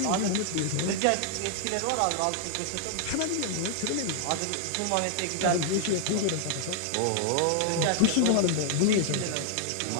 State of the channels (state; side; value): different; both; correlation -0.01